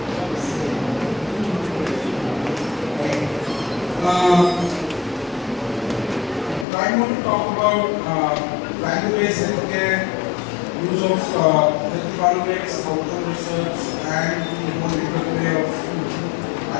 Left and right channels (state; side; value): drops out; right; at 6.7 s